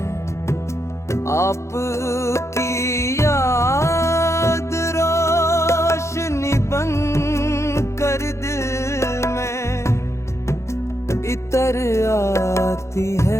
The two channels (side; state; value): right; late; 0.14 ms